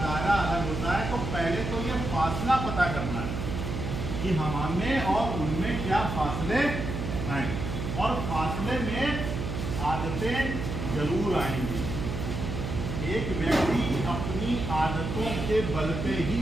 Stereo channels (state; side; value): noise; right; hum, 4 dB below the sound